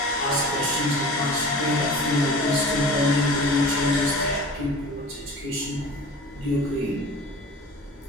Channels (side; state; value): both; normal; correlation 0.39